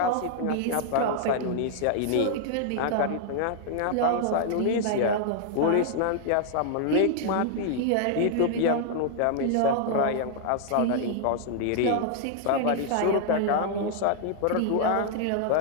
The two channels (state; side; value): different; both; correlation -0.01